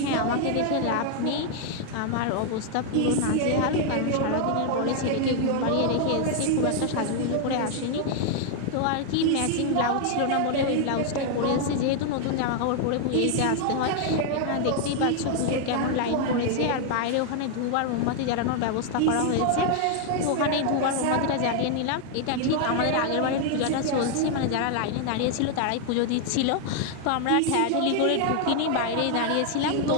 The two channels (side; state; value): both; different; correlation 0.00